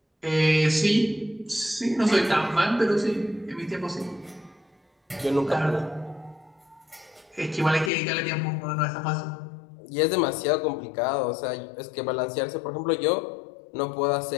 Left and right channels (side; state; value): right; drops out; at 7.9 s